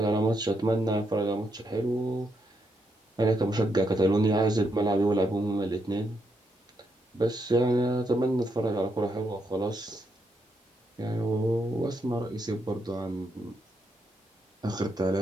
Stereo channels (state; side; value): normal; both; correlation 0.79